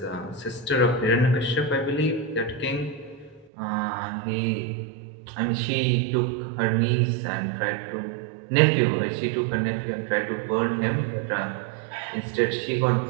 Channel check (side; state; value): left; drops out; at 3.5 s